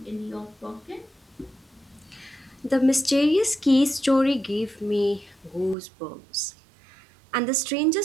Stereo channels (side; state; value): left; drops out; at 5.8 s